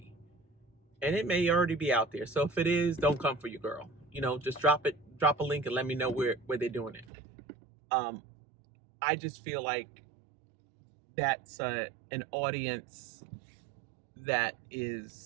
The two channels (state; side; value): drops out; left; at 7.1 s